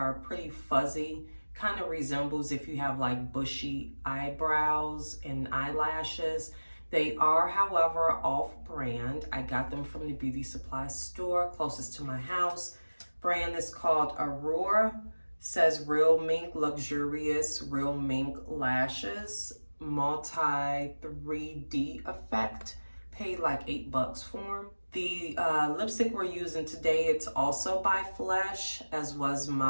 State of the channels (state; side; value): inverted; both; correlation -1.00